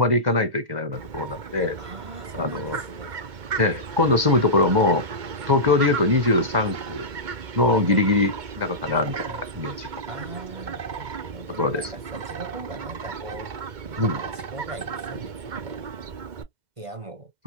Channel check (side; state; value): left; late; 2.2 ms